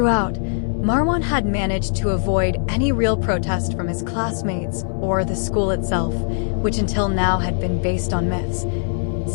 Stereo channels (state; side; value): silent; right; digital silence